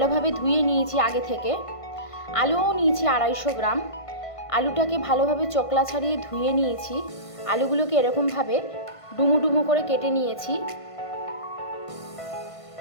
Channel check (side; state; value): right; late; 1.5 ms